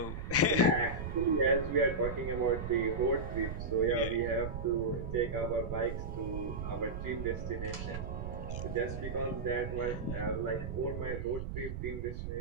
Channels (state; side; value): noise; right; rumble, 5 dB below the sound